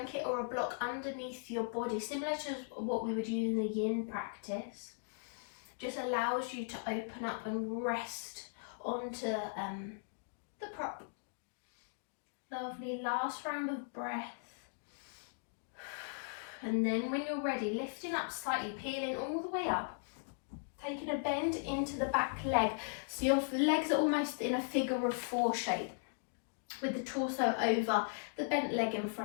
or a block underneath your body, similar to what we would use in the yin practice. Just allows you to open up and rest onto the prop. Lovely, last round of breath. And then when you're ready, lifting up slightly, peeling all the way up, taking a bend into the back leg. So your legs are almost in a figure of 4 shape, with the torso over the bent leg in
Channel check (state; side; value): silent; right; digital silence